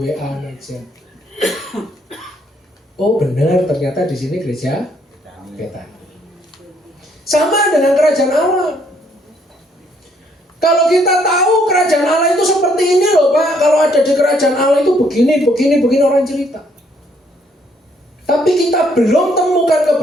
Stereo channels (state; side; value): normal; both; correlation 0.68